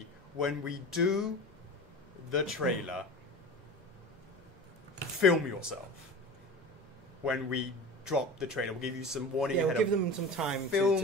when we do the trailer, film yourself. When we drop the trailer, we'll give you some warning ahead. We'll give them some time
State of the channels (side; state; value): both; normal; correlation 0.33